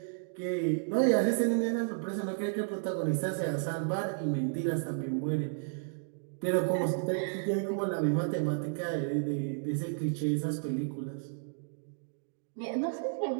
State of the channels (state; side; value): silent; left; digital silence